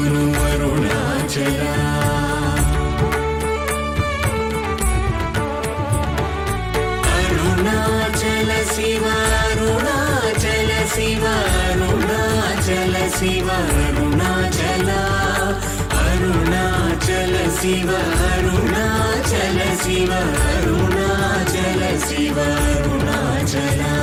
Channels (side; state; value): both; identical; correlation 1.00